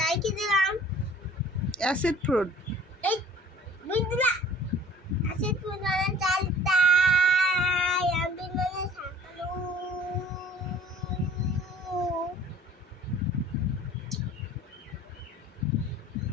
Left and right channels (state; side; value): normal; both; correlation 0.49